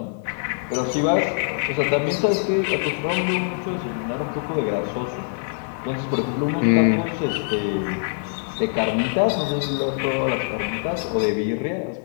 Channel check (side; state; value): right; silent; digital silence